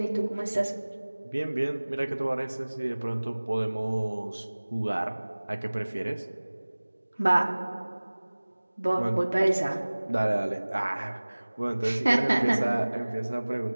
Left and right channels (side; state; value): both; inverted; correlation -1.00